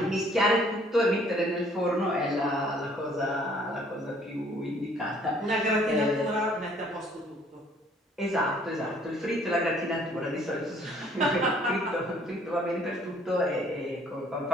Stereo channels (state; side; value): normal; both; correlation 0.60